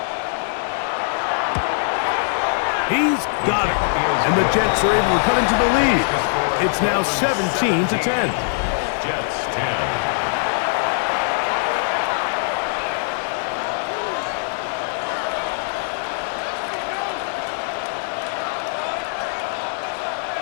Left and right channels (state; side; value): silent; right; digital silence